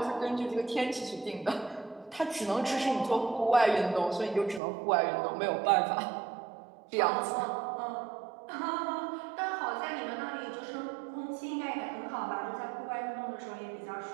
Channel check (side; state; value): left; drops out; at 4.6 s